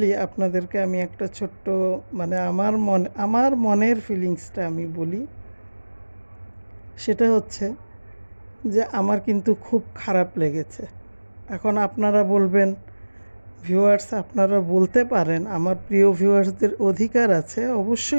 আপনাদেরকে আমি একটা ছোট্ট মানে আমার মনের ফিলিংসটা আমি বলি। সেটা হচ্ছে যে আমার কিন্তু খুব খারাপ লেগেছে। এখন আপনারা বলবেন, ভিউয়ার্স আপনারা বলতে পারেন, আমার প্রিয় ভিউয়ার্সদের অধিকার আছে,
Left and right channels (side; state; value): both; inverted; correlation -1.00